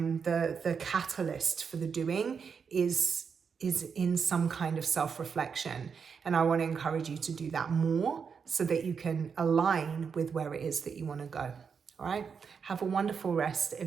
the catalyst for the doing is in some kind of self-reflection. And I want to encourage you to do that more, so that you can align with where it is that you want to go. All right. Have a wonderful rest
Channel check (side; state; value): left; quieter; 6.2 dB